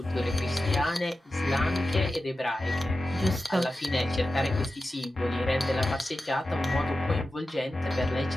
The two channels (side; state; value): both; normal; correlation 0.93